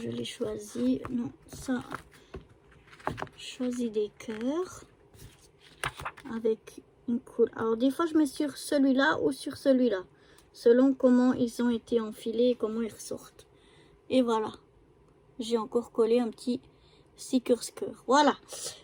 l'ai choisi, non ça, je choisis des cœurs avec une couleur. Alors des fois je mets sur celui-là ou sur celui-là, selon comment ils ont été enfilés et comment ils ressortent. Et voilà, j'ai encore collé un petit stickers cœur. Voilà,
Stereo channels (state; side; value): identical; both; correlation 1.00